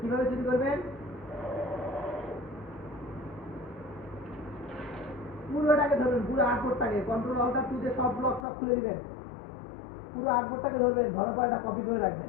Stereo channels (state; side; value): drops out; right; at 8.5 s